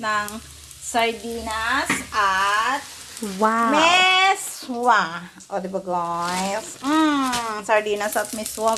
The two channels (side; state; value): both; identical; correlation 1.00